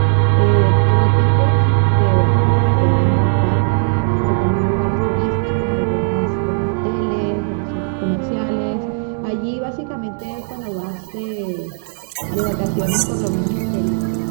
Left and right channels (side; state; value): left; silent; 68 dB below the other